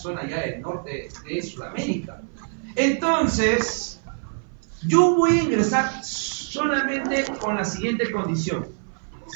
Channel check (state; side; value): silent; left; 56 dB below the other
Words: ya del norte de Sudamérica. Entonces, yo voy a ingresar solamente con la siguiente condición.